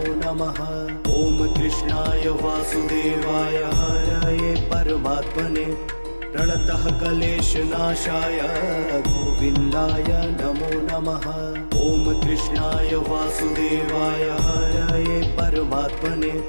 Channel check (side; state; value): both; inverted; correlation -1.00